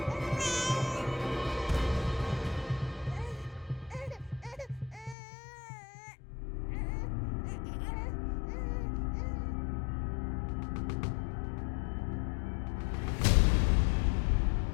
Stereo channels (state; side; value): drops out; right; at 5.2 s